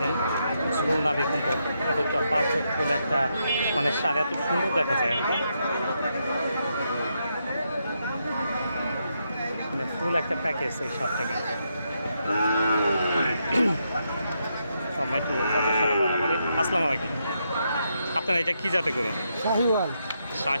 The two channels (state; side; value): inverted; both; correlation -0.81